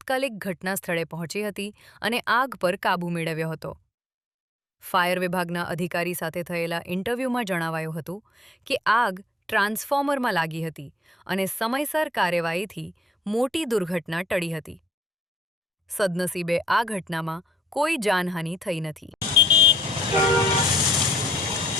ઘટના સ્થળે પહોંચી હતી અને આગ પર કાબૂ મેળવ્યો હતો। ફાયર વિભાગના અધિકારી સાથે થયેલા ઇન્ટરવ્યૂમાં જણાવાયું હતું કે આગ ટ્રાન્સફોર્મરમાં લાગી હતી અને સમયસર કાર્યવાહીથી મોટી દુર્ઘટના ટળી હતી। સદનસીબે આ ઘટનામાં કોઈ જાનહાનિ થઈ નથી।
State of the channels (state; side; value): normal; both; correlation 0.69